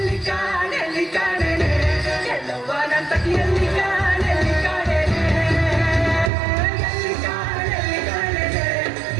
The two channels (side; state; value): left; drops out; at 6.3 s